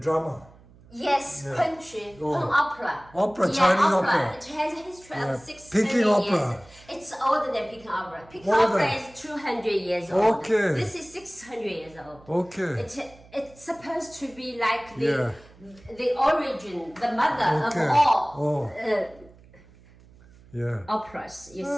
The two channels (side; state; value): right; noise; hum, 25 dB below the sound